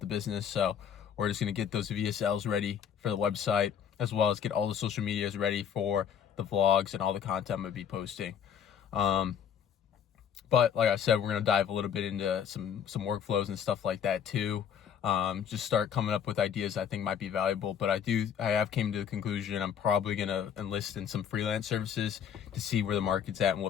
business. So we're just gonna get those VSLs ready for the website, as well as get all the social medias ready for the vlogs and all the content I'm gonna be posting. But like I said, we're gonna dive a little bit into some workflows and stuff like that too. Just start coming up with ideas I think might be valuable. But I have came to the conclusion I'm probably gonna enlist in some freelance services to see where the market's at and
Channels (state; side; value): quieter; right; 8.2 dB